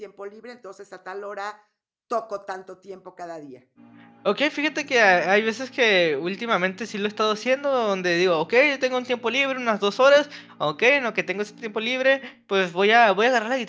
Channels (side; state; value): both; identical; correlation 1.00